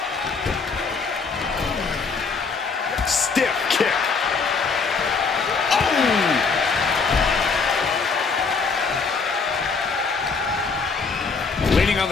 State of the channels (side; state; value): right; quieter; 4.8 dB